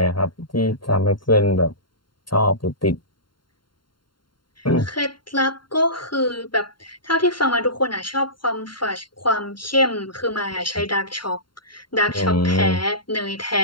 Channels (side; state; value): right; late; 0.72 ms